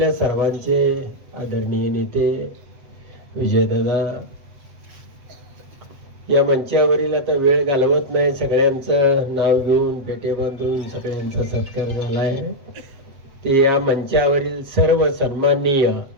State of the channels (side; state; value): left; late; 7.8 ms